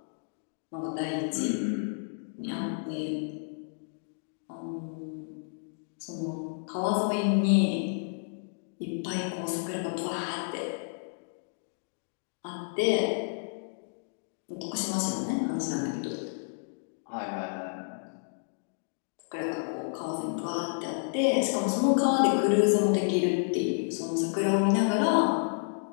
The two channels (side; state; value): right; silent; digital silence